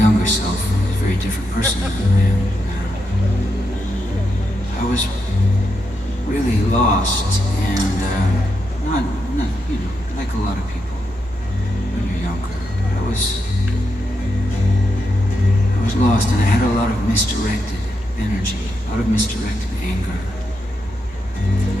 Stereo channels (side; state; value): both; normal; correlation 0.83